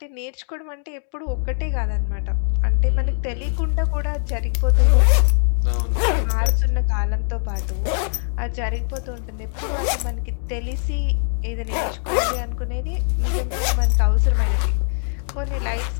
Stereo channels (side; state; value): right; silent; 57 dB below the other